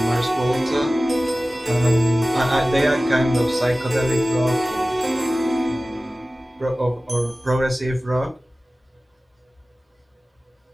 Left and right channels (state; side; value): normal; both; correlation 0.97